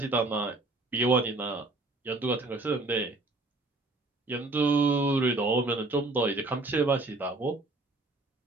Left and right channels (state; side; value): quieter; left; 3.1 dB